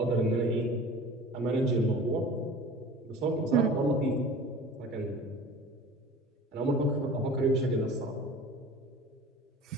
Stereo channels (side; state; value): both; normal; correlation 0.40